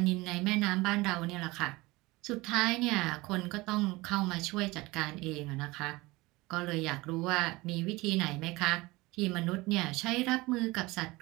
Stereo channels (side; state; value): left; quieter; 21.7 dB